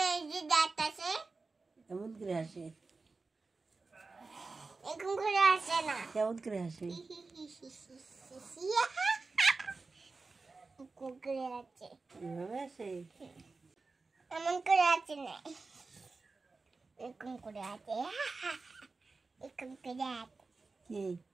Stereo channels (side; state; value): left; quieter; 3.9 dB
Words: যে দাঁত আছে, কেমন করে হাসে? এরকম করে হাসে না। কেমন করে হাসে? এরকম করে আছে। এভাবে হাসে? এমন করে আছে না, এরকম করে আছে। এরকম করে আছে। কি